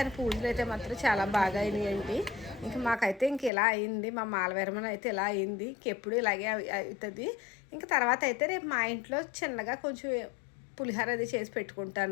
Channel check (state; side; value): drops out; right; at 3.5 s